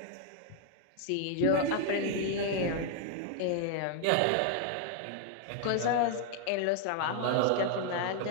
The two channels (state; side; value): different; both; correlation 0.00